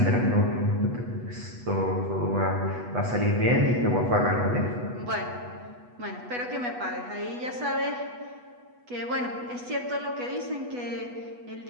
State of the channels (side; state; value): left; late; 8.2 ms